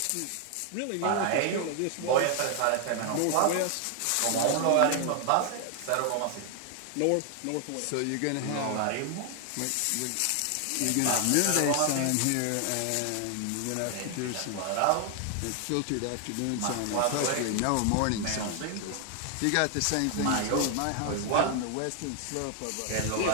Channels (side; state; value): both; different; correlation 0.00